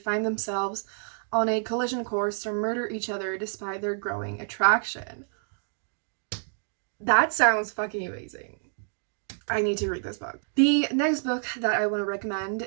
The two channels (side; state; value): left; silent; digital silence